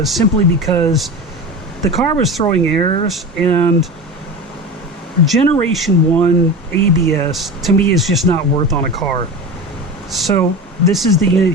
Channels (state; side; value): normal; both; correlation 0.29